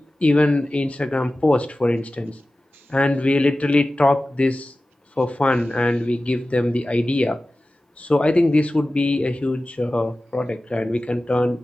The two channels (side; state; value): both; normal; correlation 0.96